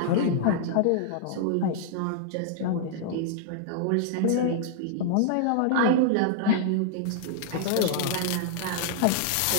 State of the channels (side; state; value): both; different; correlation -0.01